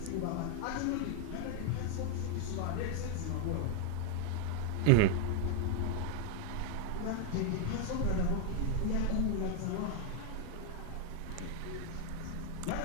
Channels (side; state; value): both; different; correlation 0.01